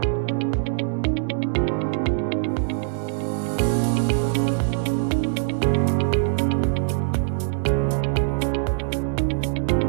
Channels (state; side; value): silent; left; digital silence